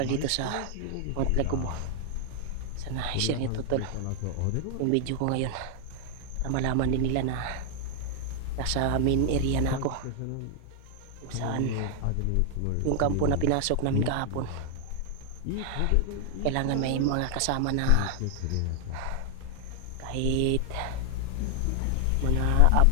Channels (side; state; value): both; different; correlation 0.00